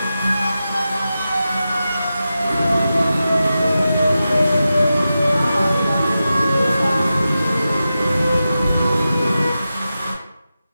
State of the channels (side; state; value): both; inverted; correlation -0.92